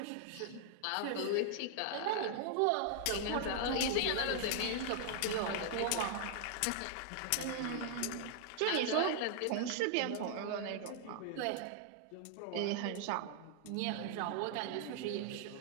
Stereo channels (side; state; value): both; different; correlation 0.00